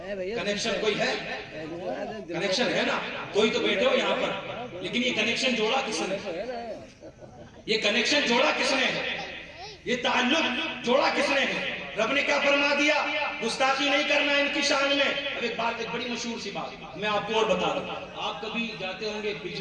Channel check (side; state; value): both; identical; correlation 1.00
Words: کوئی ہے, کنیکشن ہے نا, کوئی تو بیٹھے ہو یہاں پر, لیکن یہ کنیکشن جوڑا کس نے, یہ کنیکشن جوڑا کس نے ہے, یہ تعلق جوڑا کس نے ہے؟ رب نے کیا فرما دیا, گستاخی نہیں کرنا ان کی شان میں. اب ایک بات, ایک بڑی مشہور سی بات میں آپ کو اور بتا رہا ہوں. آپ کبھی جاتے ہوں گے